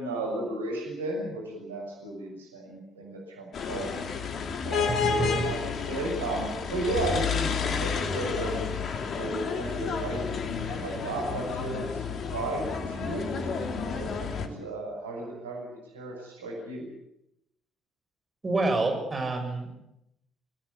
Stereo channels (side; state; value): both; normal; correlation 0.59